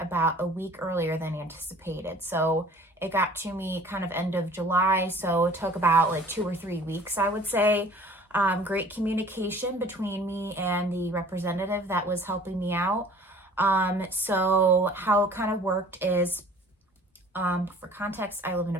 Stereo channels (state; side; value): normal; both; correlation 0.49